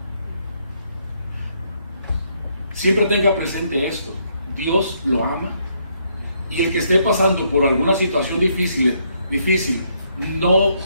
Siempre tenga presente esto. Dios lo ama. Y el que esté pasando por alguna situación difícil, no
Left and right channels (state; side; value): inverted; both; correlation -0.73